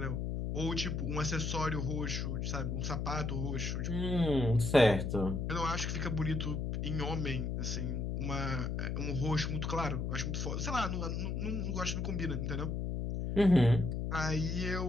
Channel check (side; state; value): left; noise; hum, 1 dB below the sound